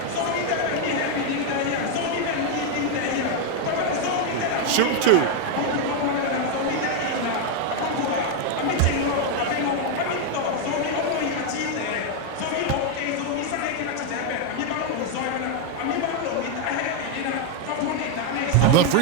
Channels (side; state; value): both; different; correlation 0.01